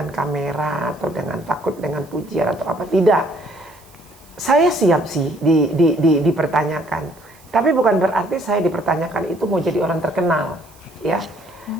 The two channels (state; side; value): noise; right; hiss, 27 dB below the sound